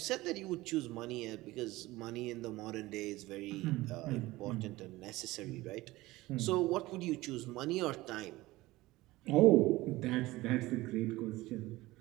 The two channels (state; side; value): quieter; left; 19.0 dB